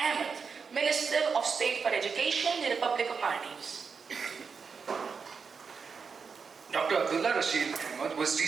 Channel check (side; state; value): left; quieter; 5.6 dB